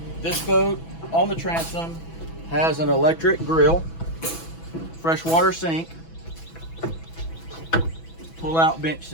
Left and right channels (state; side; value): late; right; 6.1 ms